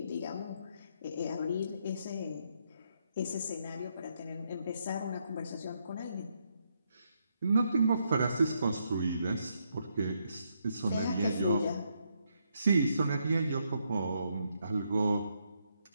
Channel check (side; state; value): both; inverted; correlation -0.77